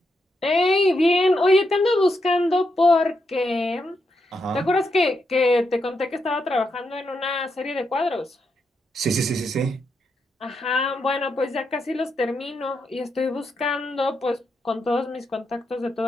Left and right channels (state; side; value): normal; both; correlation 0.82